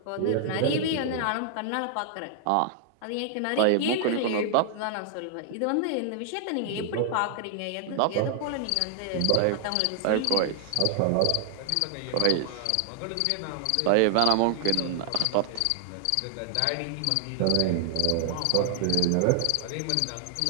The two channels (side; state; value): both; different; correlation 0.00